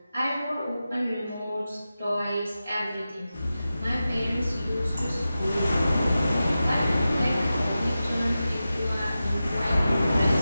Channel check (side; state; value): both; inverted; correlation -0.93